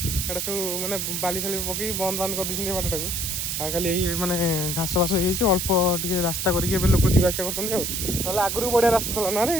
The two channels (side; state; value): right; noise; hiss, 2 dB below the sound